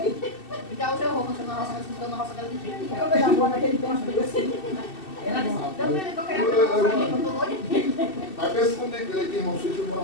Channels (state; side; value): late; right; 2.7 ms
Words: Então o seu roubo, você na roça, mas ficou na roça dela de jeito. Eu vejo a boa naquele tempo, assim. Ela disse, também eu queria fazer uma roça ali, não tô doida. Mas pensa comigo, ele tem irmão Chico